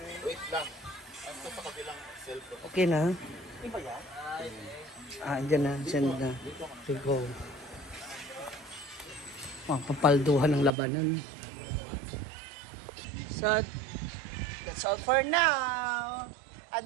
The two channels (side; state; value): left; drops out; at 10.7 s